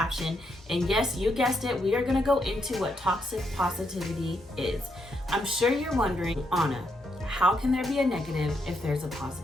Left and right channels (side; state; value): both; normal; correlation 0.78